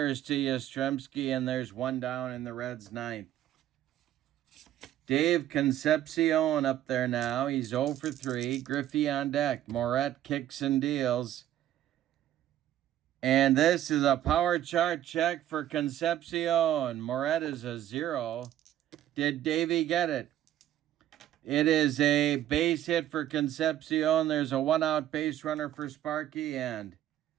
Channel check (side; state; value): left; quieter; 12.3 dB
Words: to Yastrzemski, and there's one down in the Reds' 9th. Dave Concepcion up there now. He's 0 for 3. Griffey on deck. Moret kicks and deals. And this is a power chart check for Concepcion. Moret is a 0. Did Davey get it? It is a base hit for Concepcion. There's a 1-out base runner for Sparky, and